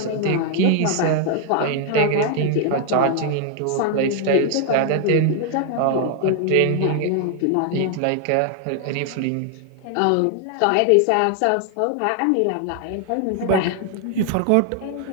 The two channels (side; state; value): both; different; correlation 0.00